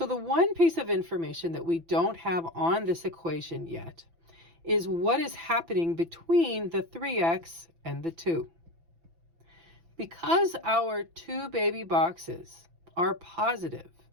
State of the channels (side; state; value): left; late; 6.0 ms